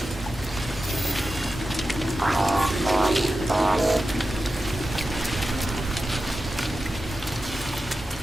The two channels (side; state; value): both; normal; correlation 0.92